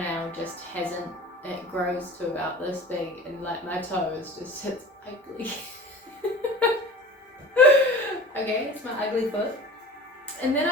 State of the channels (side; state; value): both; normal; correlation 0.38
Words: just hasn't, it grows to about this big, and like my toe is just, it's ugly. Okay, it's my ugly foot. And then